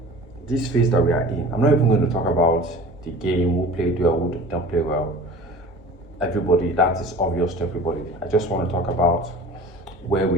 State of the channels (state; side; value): normal; both; correlation 0.41